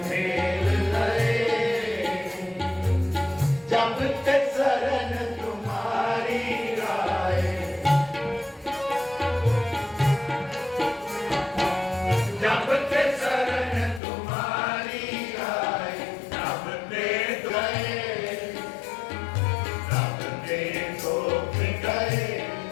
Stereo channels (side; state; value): right; drops out; at 14.0 s